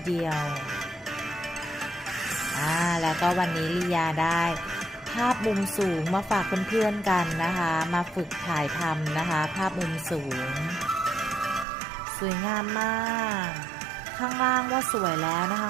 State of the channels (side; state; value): left; drops out; at 11.7 s